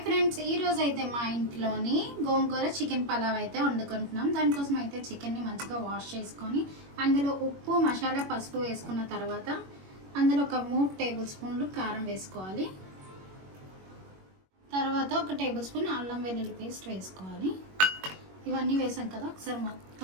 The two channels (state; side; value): late; left; 21 ms